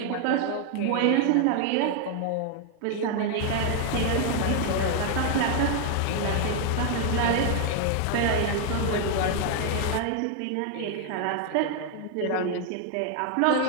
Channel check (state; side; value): different; both; correlation 0.00